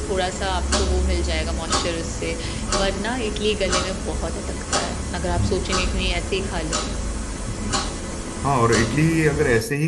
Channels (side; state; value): both; identical; correlation 1.00